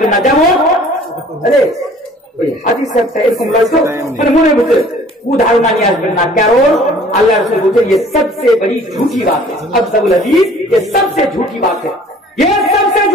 না। যেমন আরে ওই হাদিস একটা এরকম লাগতো, মানে মনে বুঝে কুধারণা নিয়ে আসবেন না, কারণ আল্লাহ রাসূল বলেছেন ये सबसे बड़ी झूठी बात है, अक़ज़बुल हदीस ये सबसे झूठी बात है, ये सबसे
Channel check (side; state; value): both; normal; correlation 0.52